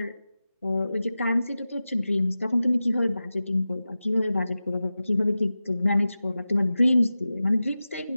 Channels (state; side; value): inverted; both; correlation -0.95